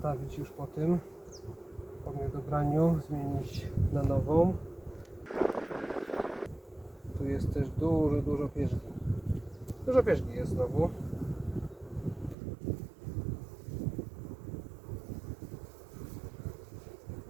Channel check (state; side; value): drops out; left; at 12.4 s